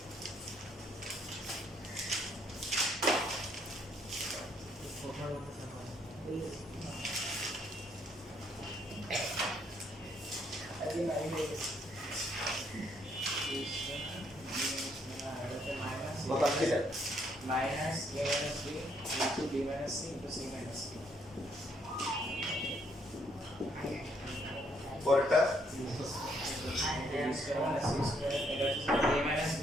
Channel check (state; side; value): normal; both; correlation 0.70